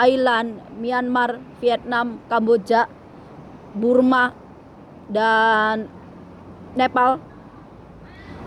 Myanmar, Vietnam, Kamboja, Burma, dan Nepal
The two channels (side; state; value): both; identical; correlation 1.00